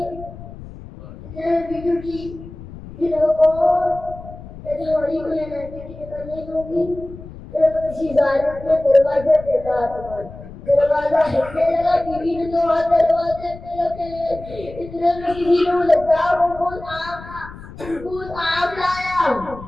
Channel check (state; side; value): noise; left; rumble, 15 dB below the sound